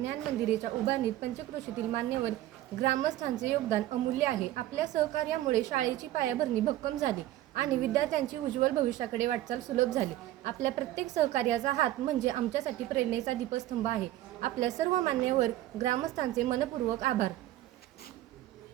मंदिराच्या उभारणीत पंचक्रोशीतील मान्यवर ग्रामस्थांचे योगदान अमूल्य आहे. आपल्या सहकार्यामुळे शाळेची पायाभरणी भक्कम झाली आणि विद्यार्थ्यांची उज्ज्वल भविष्याकडे वाटचाल सुलभ झाली. आपल्या प्रत्येक सहकार्याचा हात म्हणजे आमच्यासाठी प्रेरणेचा दीपस्तंभ आहे. आपल्या सर्व मान्यवर ग्रामस्थांचे मनपूर्वक आभार.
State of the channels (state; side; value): quieter; left; 14.5 dB